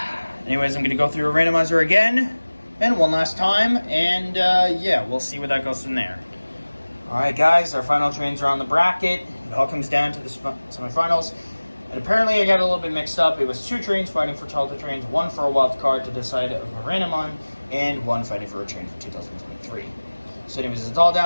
anyways, I'm going to go through a randomizer again, and one last time, and yeah, we'll see where that goes from there. Alright guys, our final trains are on the bracket. It all comes down to the semifinals. And apparently I got a little bit mixed up. It was 2 trains fighting for childhood trains, 1 for a wild card to decide of a random on, and 1 fighting for a train for 2023. So anyways, it's all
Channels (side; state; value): both; inverted; correlation -1.00